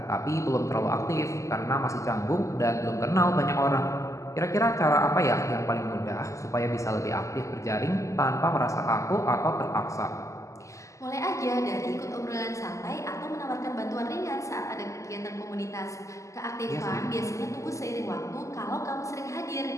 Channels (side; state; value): right; late; 0.15 ms